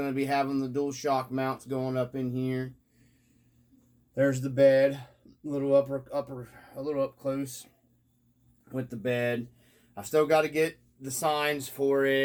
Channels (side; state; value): both; identical; correlation 1.00